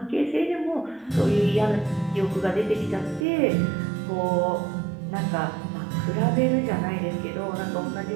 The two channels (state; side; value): drops out; left; at 3.2 s